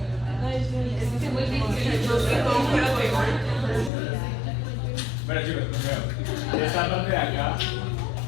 Bueno chicos, primero, de esta parte de acá,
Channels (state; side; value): drops out; right; at 3.9 s